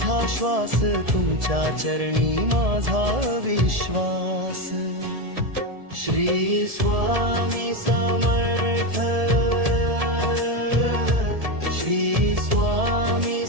श्वास, तुमच्या चरणी माझा विश्वास. श्री स्वामी समर्थ, श्री स्वामी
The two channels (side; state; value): left; late; 1.7 ms